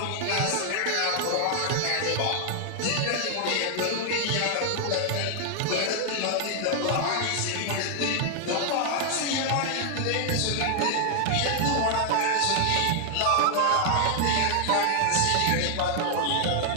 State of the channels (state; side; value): different; both; correlation 0.00